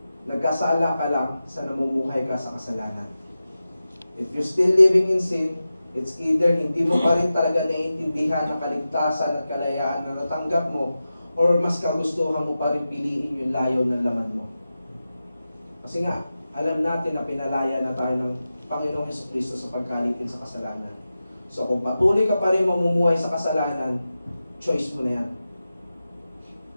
nagkasala ka lang sa namumuhay ka sa kasalanan. If you're still living in sin, it's either hindi mo pa rin talaga naiintindihan ang kaligtasan at kalayaan na natanggap mo, or mas kagustuhan mo pa rin piliin yung layo ng laman mo. Kasi nga, alam natin na pinalaya na tayo ng Panginoong Jesucristo sa pagkalipin sa kasalanan. So kung patuloy ka pa rin mamumuhay sa kasalanan, choice mo na yan.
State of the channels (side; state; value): both; inverted; correlation -0.93